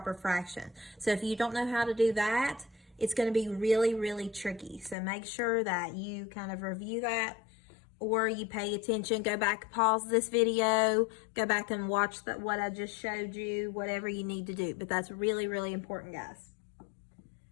fraction. So if you don't know how to do that, it's going to be really, really tricky. So make sure that you kind of review that, or you pay attention, go back, pause this video, go back and watch what I just showed you, whatever you need to do. But that's really, really important, guys.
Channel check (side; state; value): right; drops out; at 5.0 s